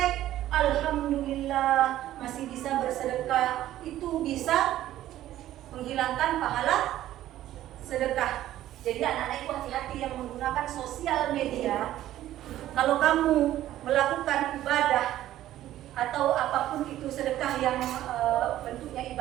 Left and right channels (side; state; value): left; quieter; 13.4 dB